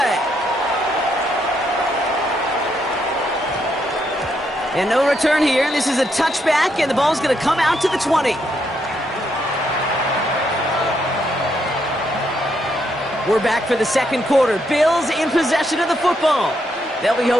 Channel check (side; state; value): both; normal; correlation 0.77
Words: And no return here. This is a touchback, and the ball's going to come out to the 20. We're back for the second quarter. Bills in possession of the football. They'll be